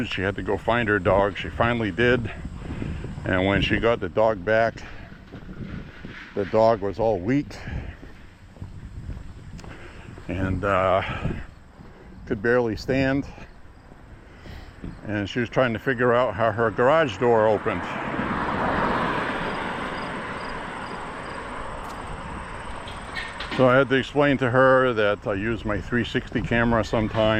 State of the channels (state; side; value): identical; both; correlation 1.00